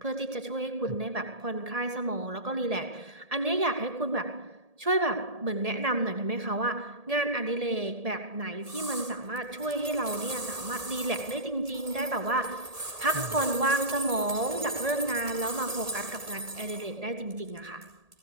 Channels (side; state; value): left; late; 1.7 ms